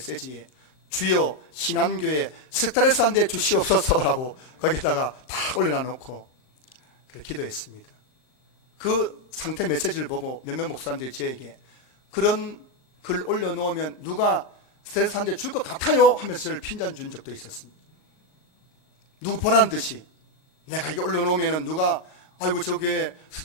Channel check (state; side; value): late; right; 38 ms